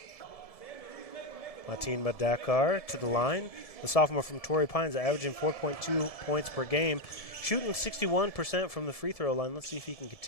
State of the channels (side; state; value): right; late; 1.7 ms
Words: Martin Madakar to the line. The sophomore from Torrey Pines averaging 4.2 points per game, shooting 61% from the free throw line. Let's see if he can